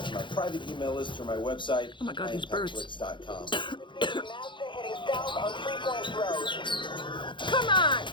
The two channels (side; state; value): right; late; 0.23 ms